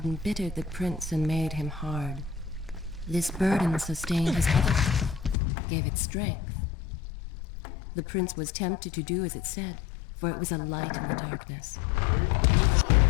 embittered the prince and made him hard. This burden sustained his health, gave it strength. The prince was tempted to do as it said, for it was a light in the darkness.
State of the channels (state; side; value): drops out; right; at 5.4 s